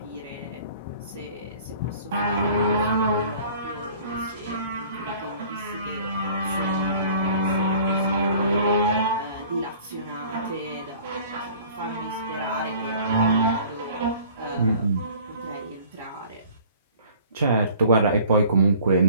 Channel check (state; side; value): inverted; both; correlation -0.49